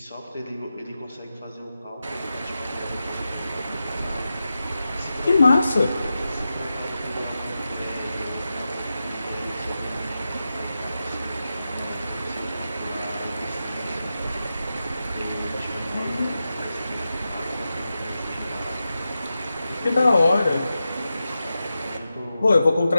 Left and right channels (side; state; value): both; inverted; correlation -0.91